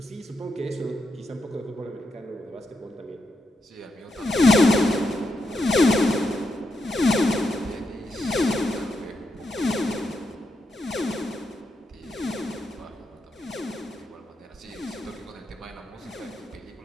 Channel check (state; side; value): normal; both; correlation 0.83